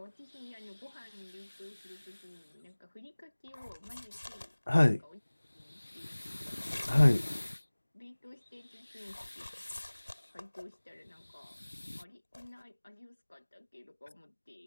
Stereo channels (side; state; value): both; inverted; correlation -1.00